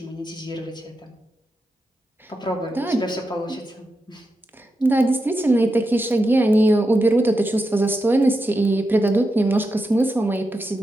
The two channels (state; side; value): normal; both; correlation 0.87